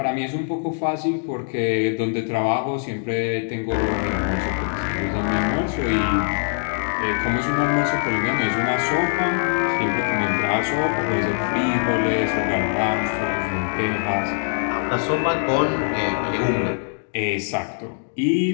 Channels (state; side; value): silent; right; digital silence